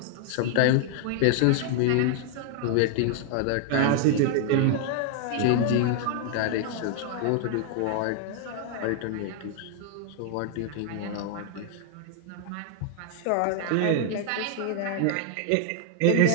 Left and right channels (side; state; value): both; different; correlation 0.00